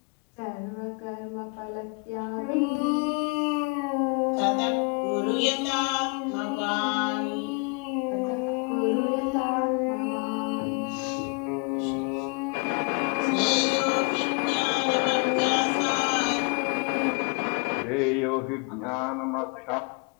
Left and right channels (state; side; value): quieter; right; 33.8 dB